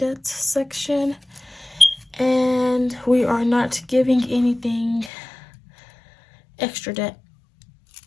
section, and we are not giving anything extra debt.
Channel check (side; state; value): right; drops out; at 5.1 s